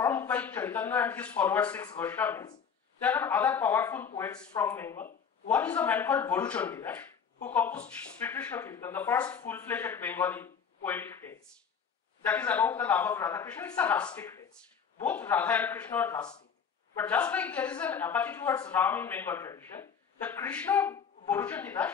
by Chaitanya and his followers 6 Goswamis, there are other powerful poets from Bengal. One is a man called Boru Chandidash, who composed Sri Krishna Kirtan, the first full-fledged Bengali poetic text. That is about the love of Radha Krishna. It's a rustic text. Both Radha and Krishna are rustic. But just like there is an apathy towards Ram in Bengal tradition, the Krishna Boruchandidas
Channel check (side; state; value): right; quieter; 6.9 dB